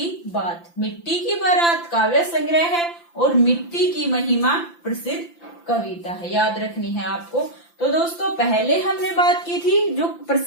बात। मिट्टी की बारात काव्य संग्रह है और मिट्टी की महिमा प्रसिद्ध कविता है, याद रखनी है आपको। तो दोस्तों पहले हमने बात की थी जो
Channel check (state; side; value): late; right; 5.9 ms